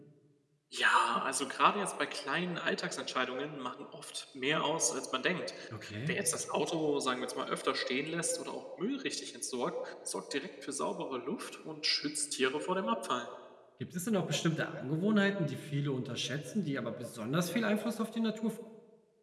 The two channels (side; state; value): both; identical; correlation 1.00